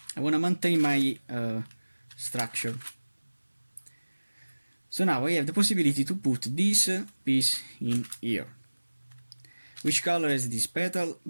I want to maintain my structure. So now I have the possibility to put this piece in here. Which color is this petal?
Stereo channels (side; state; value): both; inverted; correlation -1.00